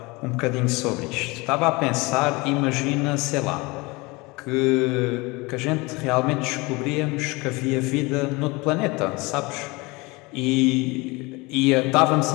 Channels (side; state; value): right; quieter; 24.7 dB